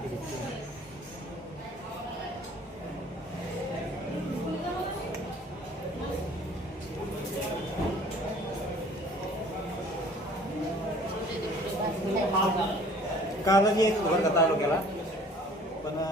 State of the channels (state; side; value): normal; both; correlation 0.51